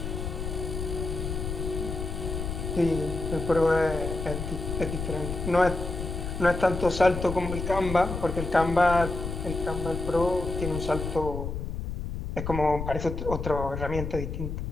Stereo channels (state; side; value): noise; left; rumble, 5 dB below the sound